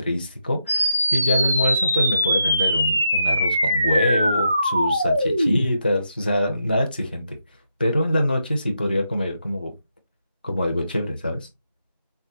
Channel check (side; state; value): both; inverted; correlation -0.83